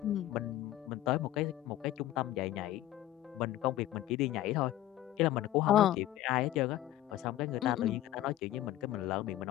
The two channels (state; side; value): quieter; right; 13.9 dB